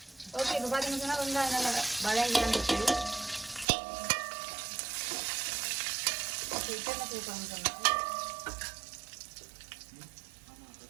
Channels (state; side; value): drops out; left; at 3.7 s